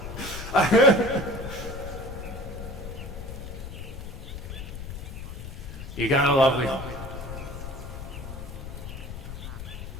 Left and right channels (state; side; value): noise; left; rumble, 9 dB below the sound